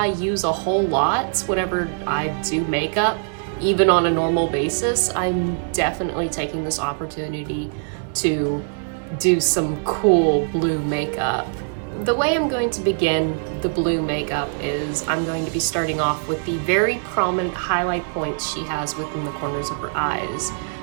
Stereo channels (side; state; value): left; silent; digital silence